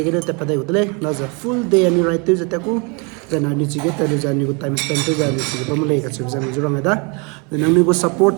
gele te padai udle na za full day ani right to za ta ko then ani chiga ta za ani ko time spend to za ani chiga pam le ka chiga za jurang da then ani ko support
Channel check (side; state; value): left; quieter; 32.1 dB